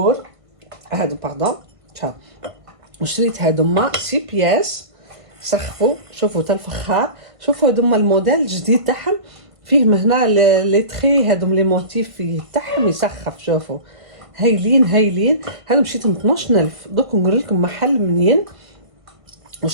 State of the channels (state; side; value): late; left; 1.5 ms